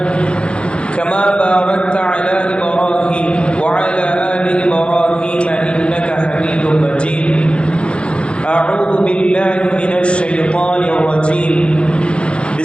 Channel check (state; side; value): late; right; 0.057 ms